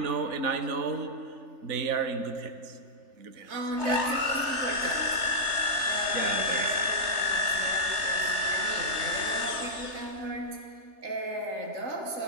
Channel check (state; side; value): late; left; 3.2 ms